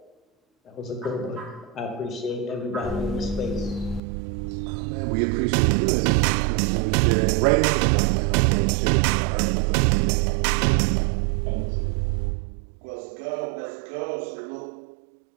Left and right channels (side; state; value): left; drops out; at 4.0 s